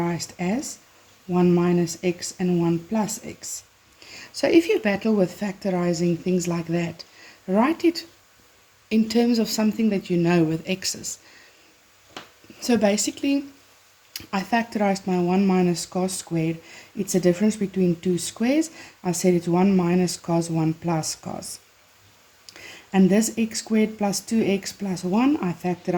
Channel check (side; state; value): both; identical; correlation 1.00